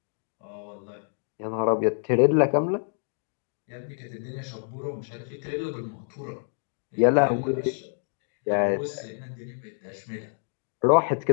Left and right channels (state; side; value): silent; right; digital silence